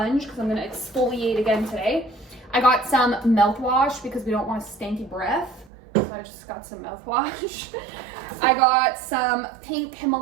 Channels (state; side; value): drops out; left; at 5.7 s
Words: because I'm gonna exfoliate again today. I got some mouthwash because we don't want a stanky breath. So I just got some mouthwash. I got some pink